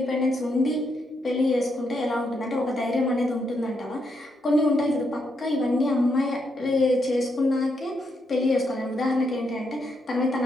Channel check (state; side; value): normal; both; correlation 0.80